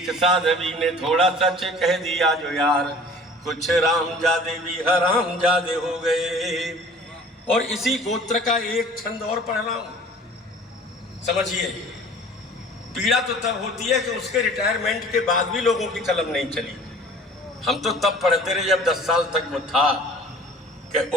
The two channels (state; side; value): normal; both; correlation 0.47